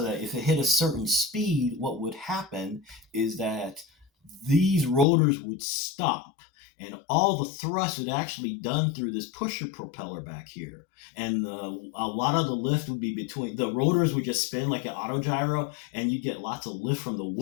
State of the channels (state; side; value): drops out; right; at 5.1 s